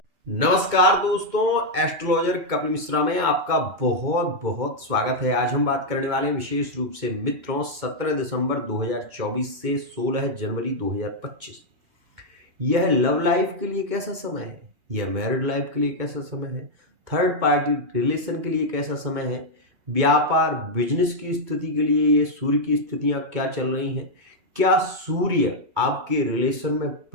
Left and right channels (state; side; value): late; left; 2.2 ms